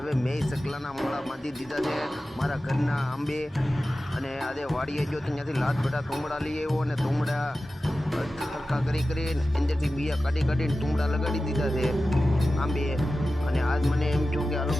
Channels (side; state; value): both; normal; correlation 0.94